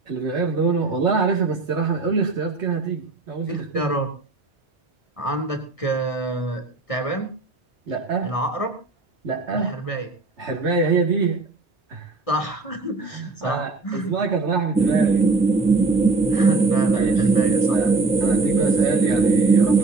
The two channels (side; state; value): left; quieter; 3.7 dB